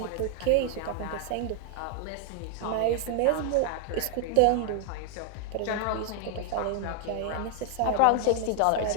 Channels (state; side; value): different; both; correlation 0.00